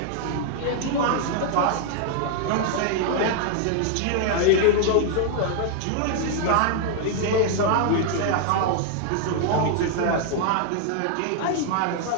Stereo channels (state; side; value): different; both; correlation 0.00